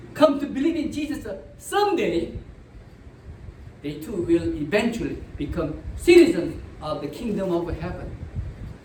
come to believe in Jesus someday, they too will eventually become citizens of the kingdom of heaven.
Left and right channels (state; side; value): identical; both; correlation 1.00